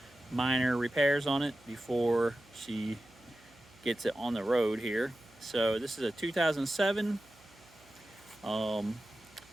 minor repairs on it before she gets it on the road here. So this is a 2007.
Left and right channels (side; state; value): right; noise; hum, 27 dB below the sound